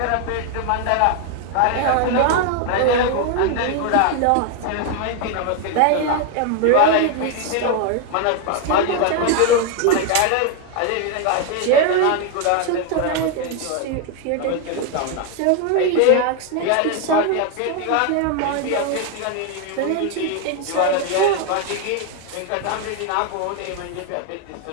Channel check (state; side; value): different; both; correlation 0.01